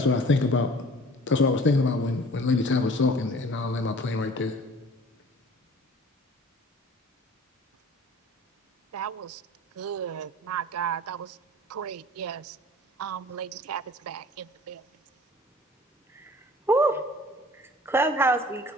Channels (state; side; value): normal; both; correlation 0.47